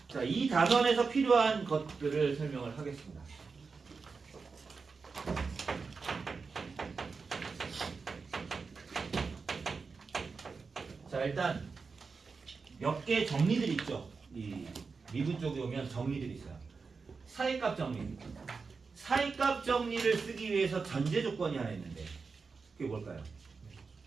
자, 이 단원에서 필요한 것들을 설명을 하겠습니다. 자, 일단 몇 개 정리들이 있죠. 이 미분 쪽에 오면 정리들이 있어요. 사이값 정리. 사이값 정리를 쓰기 위해서 전제 조건이 하나 있는데 그게 뭘까요?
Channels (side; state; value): left; quieter; 4.8 dB